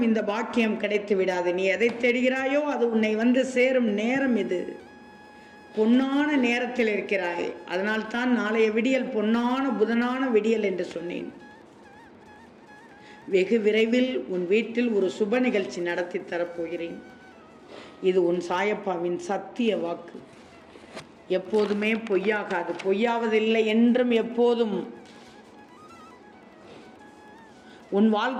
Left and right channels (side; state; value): both; identical; correlation 1.00